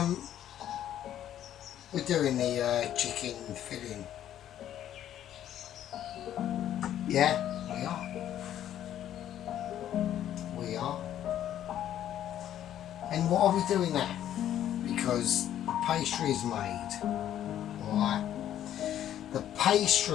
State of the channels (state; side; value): quieter; right; 11.2 dB